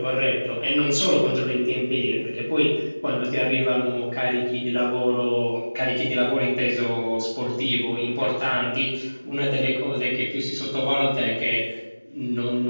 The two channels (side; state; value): both; inverted; correlation -1.00